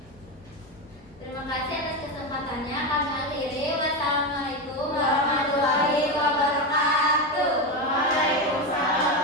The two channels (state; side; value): normal; both; correlation 0.14